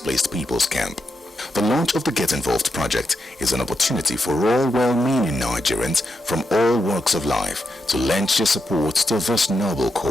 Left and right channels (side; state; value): both; normal; correlation 0.84